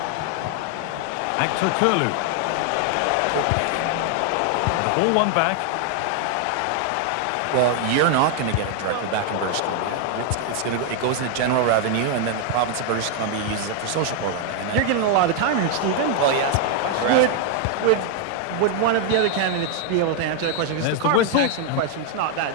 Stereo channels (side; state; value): both; different; correlation 0.00